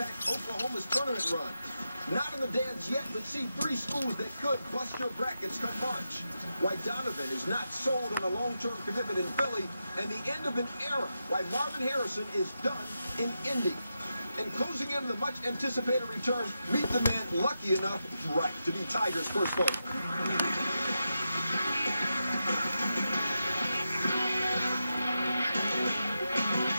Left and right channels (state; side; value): inverted; both; correlation -0.88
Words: Oklahoma's tournament run. Not in the dance yet, but see 3 schools that could bust your brackets come March. Why Donovan is not sold on a long-term commitment in Philly, and the end of an era. Why Marvin Harrison is done in Indy. And closing in the much-anticipated return, meet the man lucky enough, right, to be Tiger's first vote.